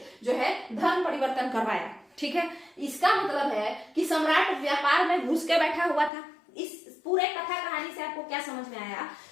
जो है धर्म परिवर्तन करवाया। ठीक है, इसका मतलब है कि सम्राट व्यापार में घुस के बैठा हुआ था। इस पूरे कथा कहानी से आपको क्या समझ में आया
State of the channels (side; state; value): right; drops out; at 6.1 s